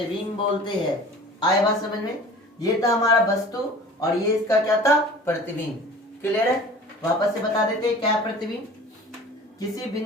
बोलते हैं। आए बात समझ में, ये था हमारा वस्तु और ये इसका क्या था, प्रतिबिंब। क्लियर है, वापस से बता देते हैं क्या है प्रतिबिंब। किसी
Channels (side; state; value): both; normal; correlation 0.43